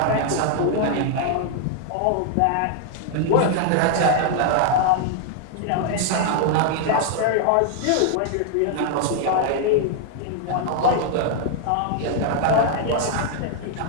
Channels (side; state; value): both; different; correlation 0.00